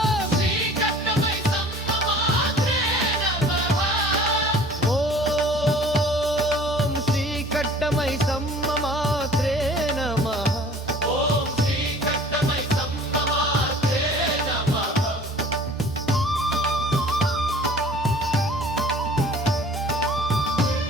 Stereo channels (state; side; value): normal; both; correlation 0.48